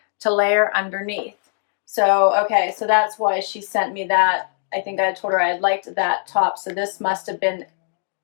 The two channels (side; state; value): right; silent; digital silence